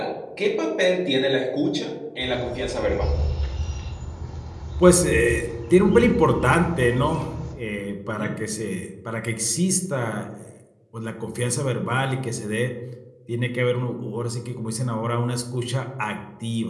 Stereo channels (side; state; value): both; identical; correlation 1.00